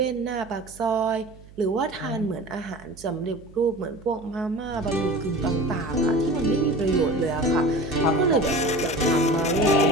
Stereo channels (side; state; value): right; noise; hum, 21 dB below the sound